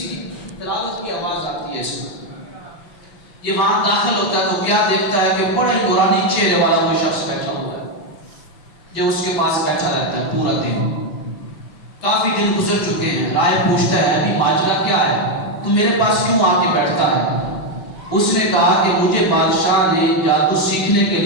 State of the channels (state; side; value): late; right; 6.0 ms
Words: کی تلاوت کی آواز آتی ہے. اس کو یہ وہاں داخل ہوتا ہے تو کیا دیکھتا ہے کہ بڑے نورانی چہرے والا کوئی شخص بیٹھا ہوا ہے جو اس کے پاس بیٹھا رہتا ہے پورا دن. کافی دن گزر چکے ہیں. رائے پوچھتا ہے ابھی ماجرا کیا ہے، تو میرے پاس کیوں آ کے بیٹھتا ہے؟ اس نے کہا کہ مجھے بادشاہ نے جادو سیکھنے کے